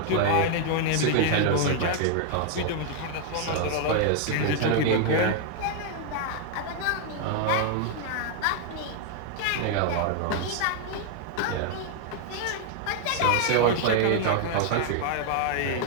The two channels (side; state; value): both; different; correlation 0.00